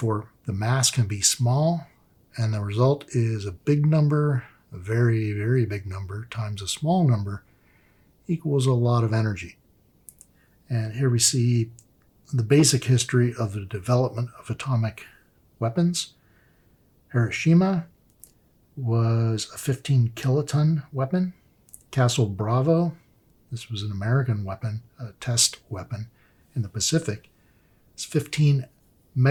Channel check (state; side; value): identical; both; correlation 1.00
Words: the mass can be small, and the result is a big number, a very, very big number, times a small number equals a lot of energy. And here we see the basic history of the development of atomic weapons. Hiroshima was a 15 kiloton weapon. Castle Bravo, this was an American weapon, a test weapon in the Pacific, it's 15